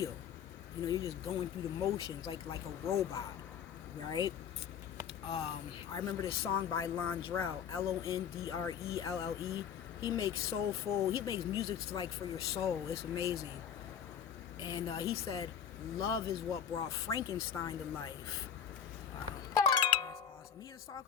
You know, you're just going through the motions like a robot, right? I remember this song by Londrelle, Londrelle. He makes soulful. He makes music like for your soul. It's amazing. And he said, "Love is what brought Frankenstein to life." Wow, that's awesome. He has a song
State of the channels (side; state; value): right; quieter; 8.1 dB